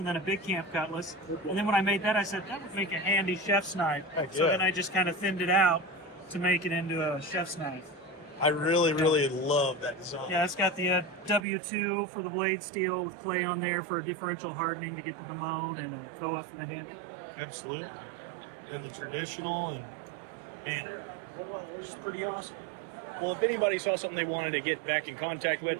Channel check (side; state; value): left; drops out; at 11.4 s